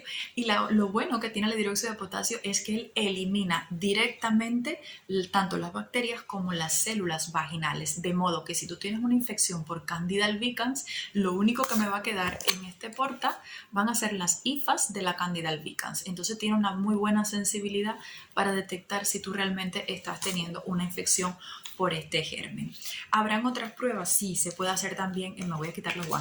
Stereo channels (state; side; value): identical; both; correlation 1.00